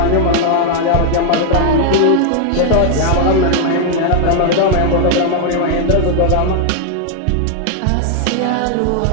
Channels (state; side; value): different; both; correlation 0.00